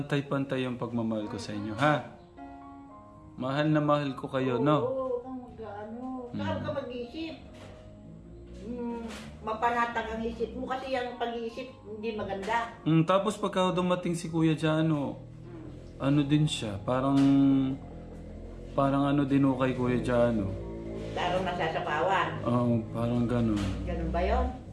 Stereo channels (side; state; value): both; identical; correlation 1.00